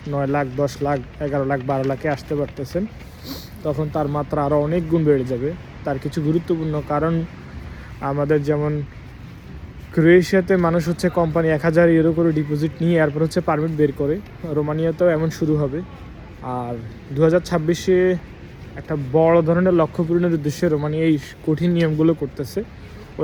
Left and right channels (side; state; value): both; identical; correlation 1.00